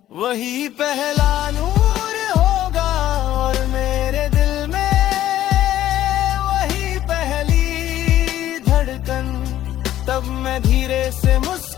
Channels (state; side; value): quieter; right; 13.0 dB